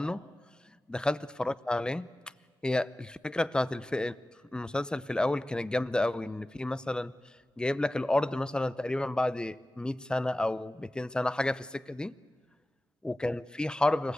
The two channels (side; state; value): both; normal; correlation 0.96